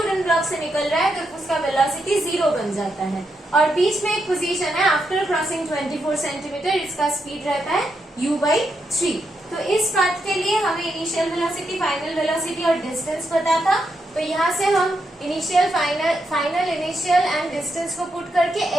ब्लॉक से निकल रहा है तब उसका वेलोसिटी 0 बन जाता है, और बीच में एक पोजीशन है आफ्टर क्रॉसिंग 24 सेंटीमीटर, इसका स्पीड रहता है u/3. तो इस पाथ के लिए हमें इनिशियल वेलोसिटी, फाइनल वेलोसिटी और डिस्टेंस पता था, तो यहाँ से हम initial, final, initial and distance को पुट करके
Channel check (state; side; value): normal; both; correlation 0.82